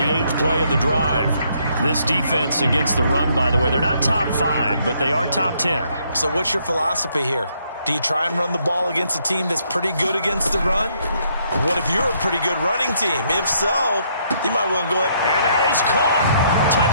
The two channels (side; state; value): both; inverted; correlation -0.71